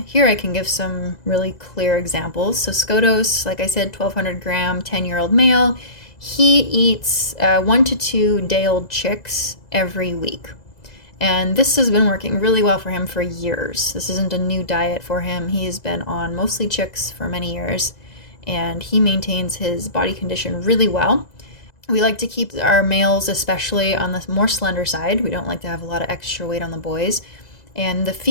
here I can give some really clear examples. So Skotos, like I said, 1,200 gram, 10-year-old male. He eats 1 to 2 day-old chicks every week. And this has been working really well for him for years. This isn't a new diet for him. He's been on mostly chicks for many years, and he maintains his body condition really well. We like to keep our males especially on the more slender side. We don't like to have a lot of extra weight on the boys. And the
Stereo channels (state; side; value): late; right; 2.0 ms